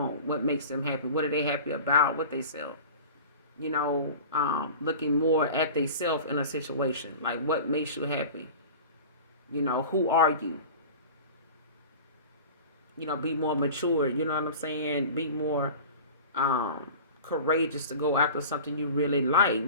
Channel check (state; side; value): inverted; both; correlation -0.37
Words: what makes them happy, what are they happy about, what they self, looking more at they self in a situation, like what makes you happy, who are you, be more mature, you know what I'm saying, be more courageous to go after something you really like,